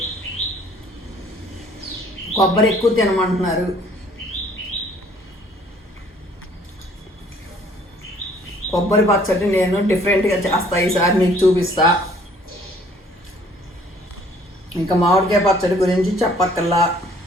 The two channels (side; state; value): both; normal; correlation 0.58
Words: కొబ్బరి ఎక్కువ తినమంటున్నారు. కొబ్బరి పచ్చడి నేను డిఫరెంట్గా చేస్తా, ఈసారి నీకు చూపిస్తా. ఇంకా మామిడికాయ పచ్చడి గురించి చెప్పక్కల్లా.